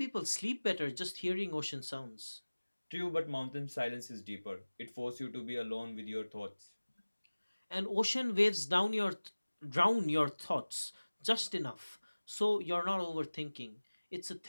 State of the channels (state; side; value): inverted; both; correlation -1.00